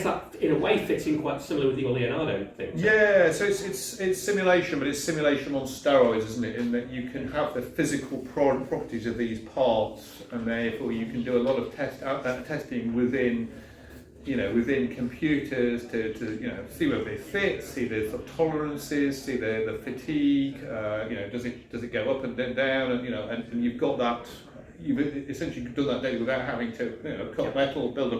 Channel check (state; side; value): identical; both; correlation 1.00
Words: that, in a way, fits in quite similar with your Leonardo thing. Yeah, so it's simulation, but it's simulation on steroids, isn't it? In that you can have the physical properties of these parts, and therefore you can do a lot of testing within computers to see whether they fit, see the sort of tolerances, see the fatigue. Does it go up and then down, and you've got that. You've essentially done that data without having to cut metal, build a